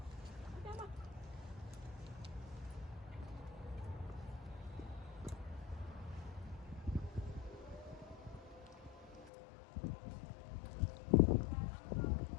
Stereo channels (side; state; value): right; drops out; at 9.3 s